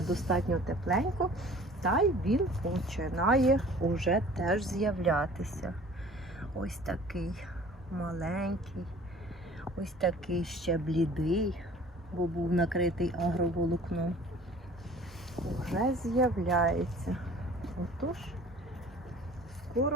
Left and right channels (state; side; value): normal; both; correlation 0.48